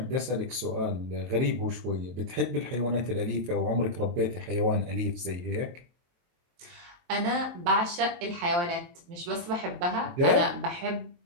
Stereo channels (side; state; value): left; late; 23 ms